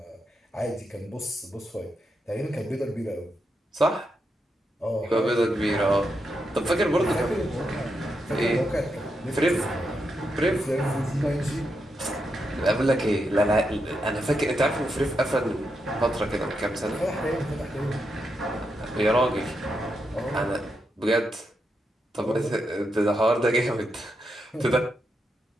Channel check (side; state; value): both; normal; correlation 0.83